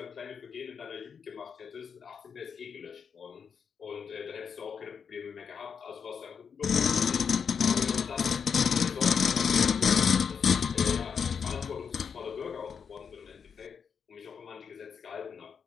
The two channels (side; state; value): right; quieter; 6.6 dB